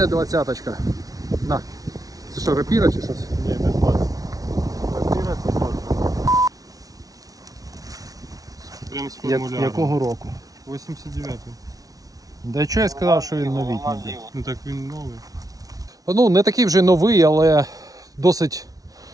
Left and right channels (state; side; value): late; left; 0.18 ms